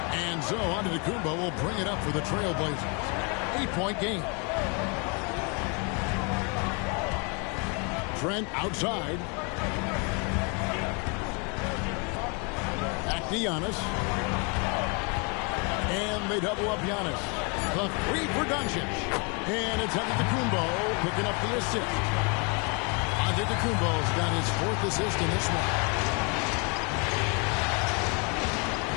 And so Antetokounmpo will bring it up for the Trailblazers. 8-point game. Trent outside. Back to Giannis. And they double up Giannis. The three for Doncic. And it's Antetokounmpo picking up the assist. Antetokounmpo's got his fourth assist in this one.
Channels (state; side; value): quieter; right; 33.8 dB